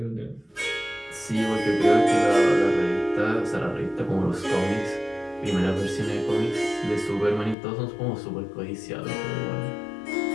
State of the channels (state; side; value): drops out; right; at 7.6 s